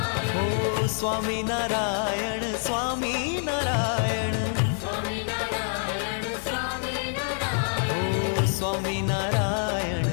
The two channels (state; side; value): silent; right; 57 dB below the other